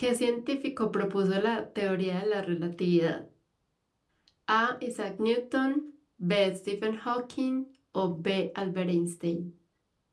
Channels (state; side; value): identical; both; correlation 1.00